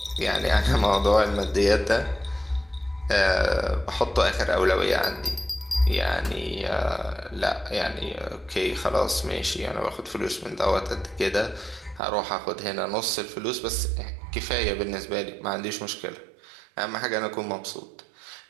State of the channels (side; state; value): left; drops out; at 12.0 s